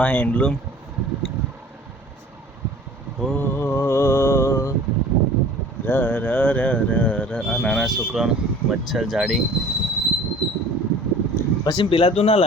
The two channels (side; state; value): both; normal; correlation 0.46